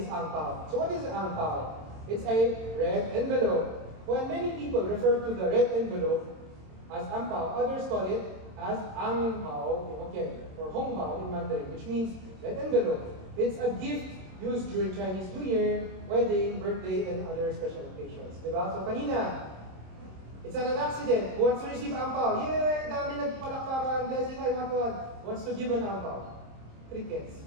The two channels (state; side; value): late; left; 27 ms